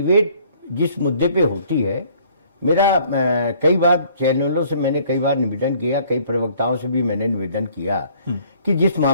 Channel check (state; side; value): inverted; both; correlation -0.58